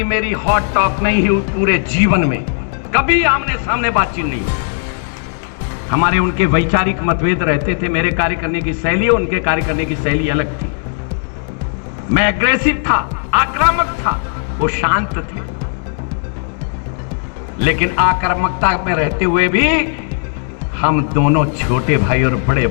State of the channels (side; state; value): right; silent; digital silence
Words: मेरी हॉट टॉक नहीं हुई पूरे जीवन में, कभी आमने सामने बातचीत नहीं हुई। हमारे उनके वैचारिक मतभेद रहते थे, मेरे कार्य करने की शैली उनके कार्य करने की शैली अलग थी। मैं एग्रेसिव था, आक्रामक था, वो शांत थे। लेकिन आक्रामकता में रहते हुए भी हम दोनों छोटे भाई और बड़े